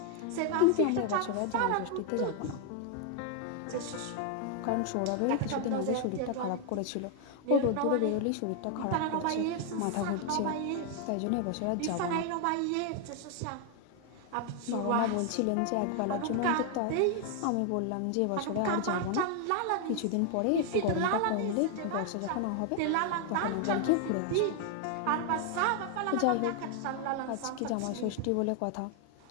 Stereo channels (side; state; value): both; different; correlation 0.00